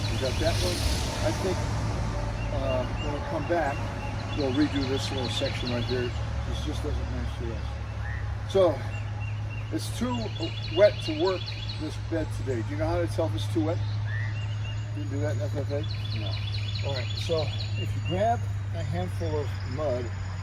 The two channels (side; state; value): both; identical; correlation 1.00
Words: We got that one. I think when we come back, we'll redo this little section right here. This just doesn't match the rest. So it's too wet to work this bed today. Do you know how to tell if it's too wet? You do that in FFA? No. All right, so if you grab a handful of mud,